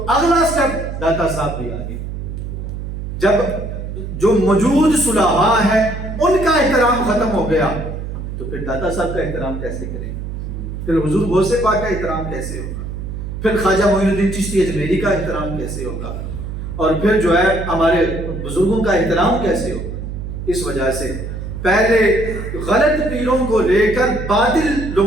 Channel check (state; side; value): noise; right; hum, 7 dB below the sound